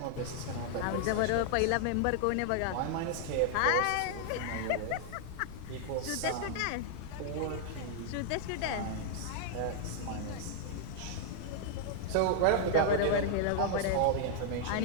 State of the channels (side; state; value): both; different; correlation -0.01